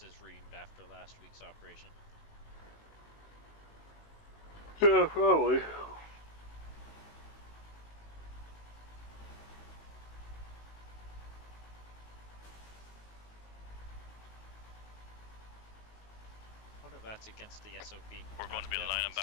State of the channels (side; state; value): right; late; 19 ms